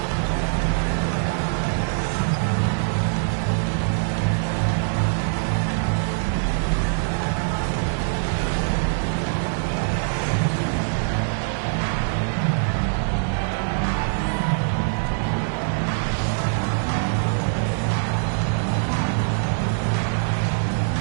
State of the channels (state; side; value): silent; left; digital silence